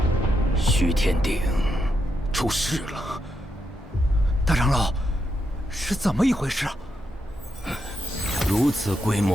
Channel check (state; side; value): normal; both; correlation 0.83